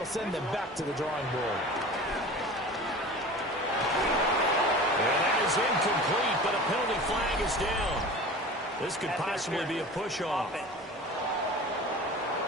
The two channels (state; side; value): normal; both; correlation 0.37